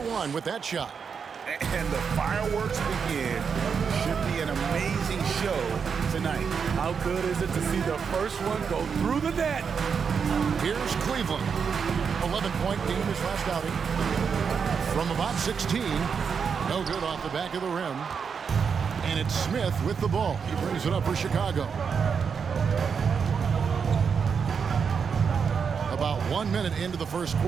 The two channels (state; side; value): quieter; left; 6.3 dB